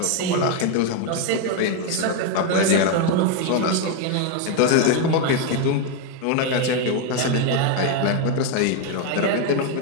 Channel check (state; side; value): different; both; correlation 0.01